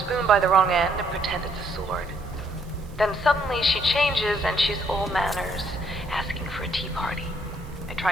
by the wrong end and pretend it's a sword. Then suddenly she changes and she's all manners, asking for a tea party. I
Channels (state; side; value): noise; right; hiss, 27 dB below the sound